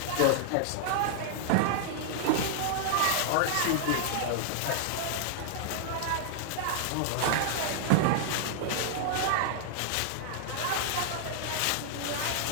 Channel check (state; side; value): different; both; correlation -0.01